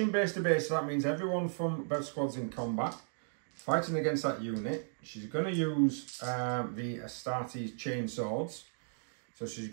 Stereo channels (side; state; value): left; silent; digital silence